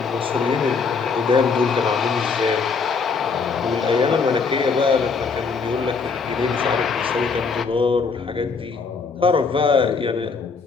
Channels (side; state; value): right; quieter; 5.0 dB